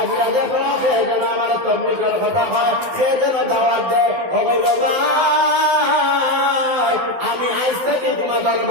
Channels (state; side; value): late; left; 12 ms